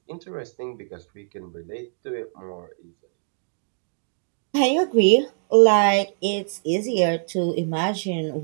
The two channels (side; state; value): left; silent; digital silence